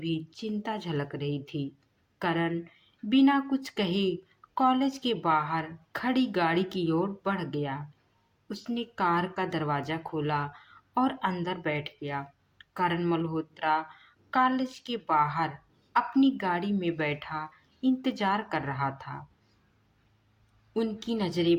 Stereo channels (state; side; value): identical; both; correlation 1.00